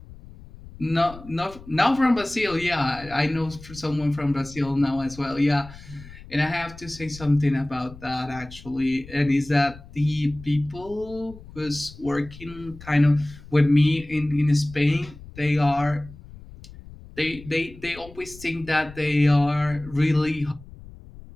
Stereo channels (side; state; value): left; noise; rumble, 18 dB below the sound